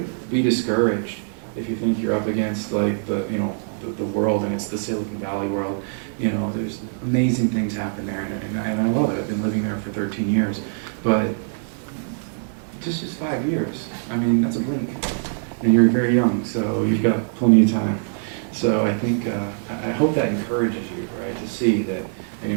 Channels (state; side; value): silent; left; digital silence